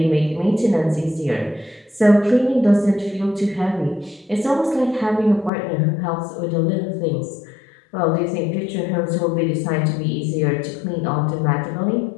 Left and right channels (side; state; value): right; drops out; at 5.5 s